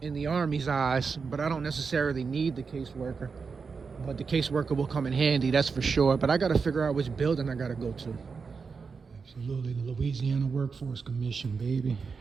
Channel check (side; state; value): left; quieter; 5.2 dB